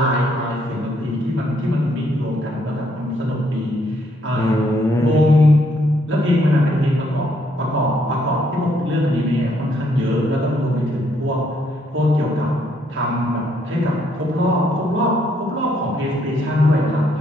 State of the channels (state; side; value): normal; both; correlation 0.71